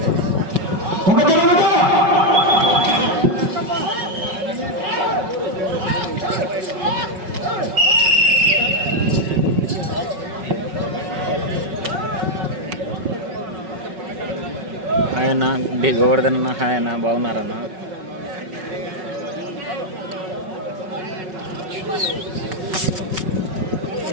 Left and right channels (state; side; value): late; left; 5.4 ms